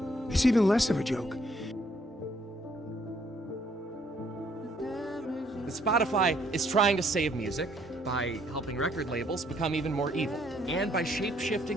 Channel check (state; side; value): normal; both; correlation 0.66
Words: it's even less of a joke. Spotify is trying to save music by helping record labels become even more evil, and by